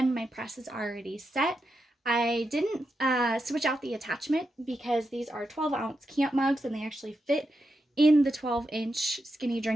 my press is already set. I didn't switch out the attachment because these are 12-ounce camp mugs and they actually fit in the 12-inch skinny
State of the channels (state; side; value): normal; both; correlation 0.86